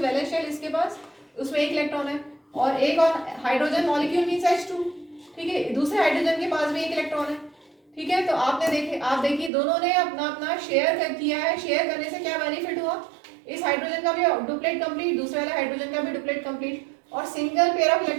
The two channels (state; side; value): drops out; left; at 9.5 s